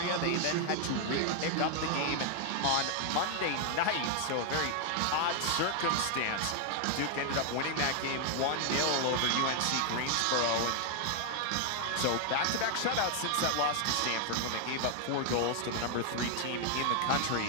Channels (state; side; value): different; both; correlation 0.00